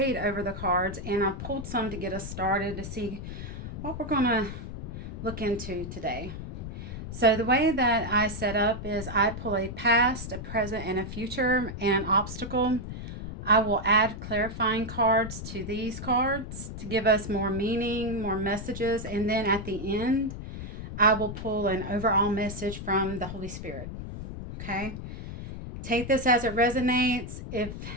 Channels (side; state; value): left; noise; rumble, 8 dB below the sound